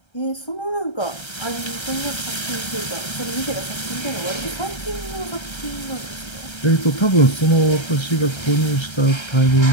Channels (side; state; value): right; late; 1.3 ms